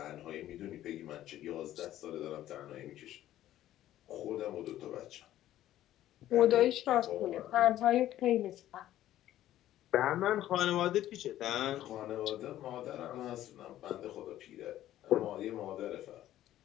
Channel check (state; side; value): quieter; right; 13.2 dB